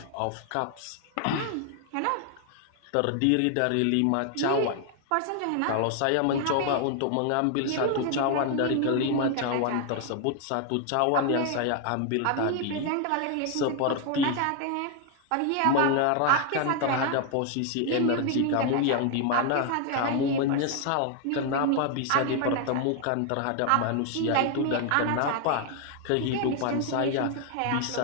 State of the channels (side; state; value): both; different; correlation 0.00